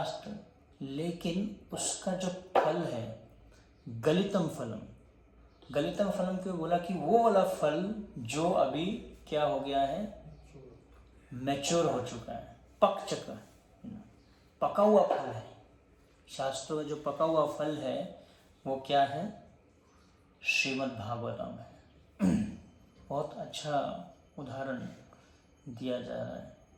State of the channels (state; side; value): identical; both; correlation 1.00